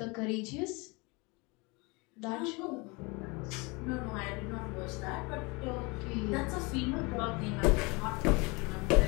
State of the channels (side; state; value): right; quieter; 27.3 dB